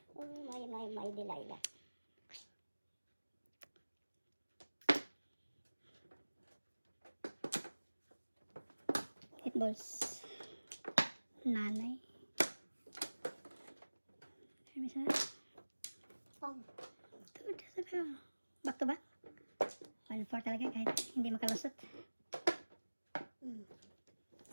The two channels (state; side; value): inverted; both; correlation -1.00